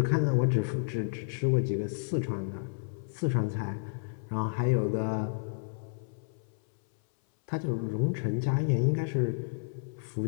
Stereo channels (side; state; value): right; silent; 57 dB below the other